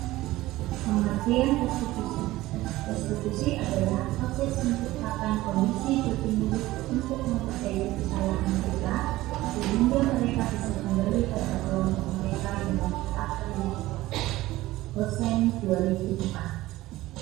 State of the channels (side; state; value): left; quieter; 17.3 dB